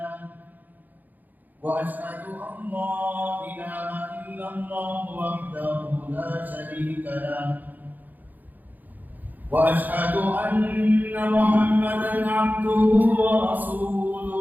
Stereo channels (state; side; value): late; left; 0.084 ms